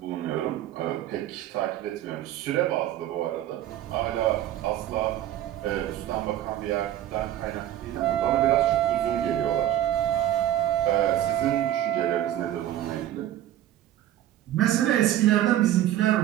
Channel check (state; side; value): quieter; left; 12.5 dB